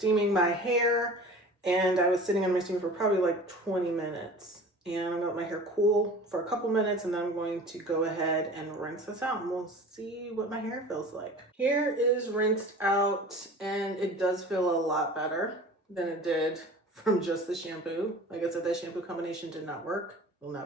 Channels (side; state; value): both; normal; correlation 0.41